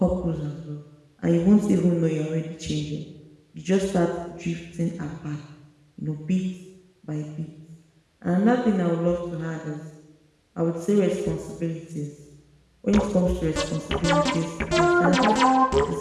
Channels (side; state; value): both; identical; correlation 1.00